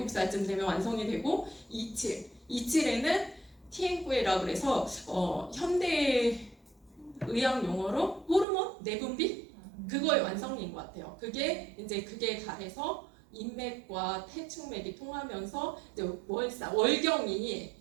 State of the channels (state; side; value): drops out; left; at 8.5 s